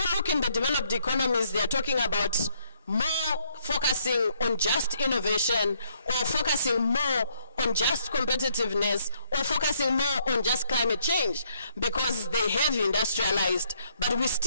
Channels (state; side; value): inverted; both; correlation -0.70